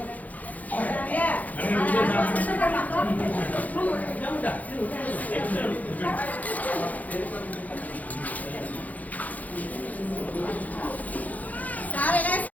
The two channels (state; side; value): late; right; 0.078 ms